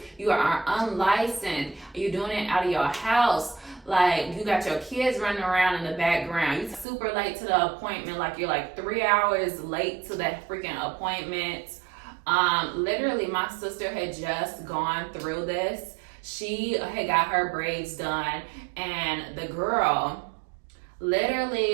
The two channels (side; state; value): left; drops out; at 6.9 s